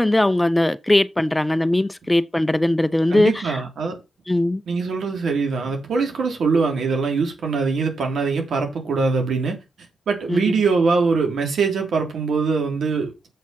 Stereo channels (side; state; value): both; normal; correlation 0.86